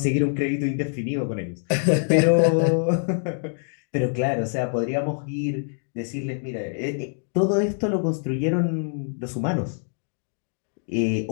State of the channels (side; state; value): right; silent; 62 dB below the other